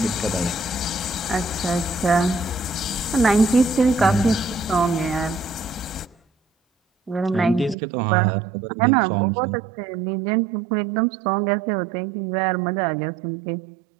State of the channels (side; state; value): left; drops out; at 7.8 s